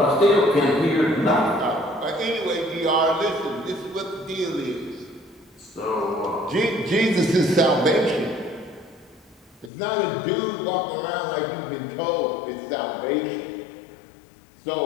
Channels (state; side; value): drops out; right; at 9.7 s